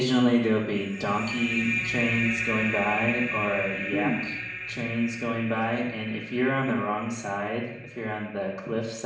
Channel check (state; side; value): identical; both; correlation 1.00